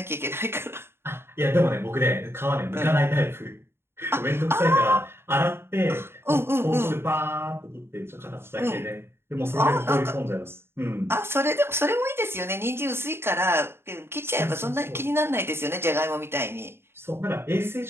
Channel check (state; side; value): late; left; 0.12 ms